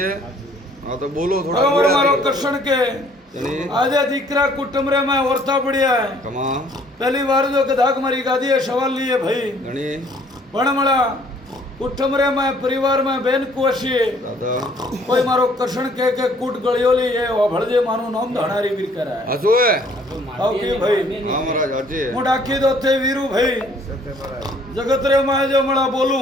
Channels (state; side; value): normal; both; correlation 0.60